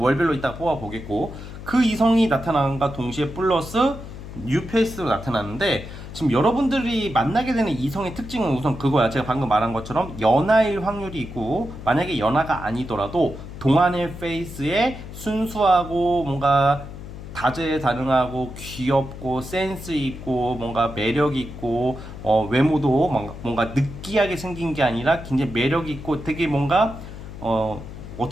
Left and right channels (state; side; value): noise; left; hum, 12 dB below the sound